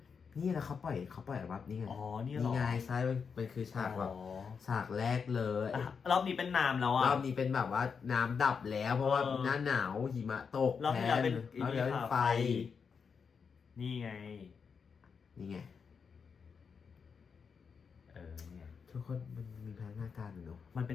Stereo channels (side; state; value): right; quieter; 6.0 dB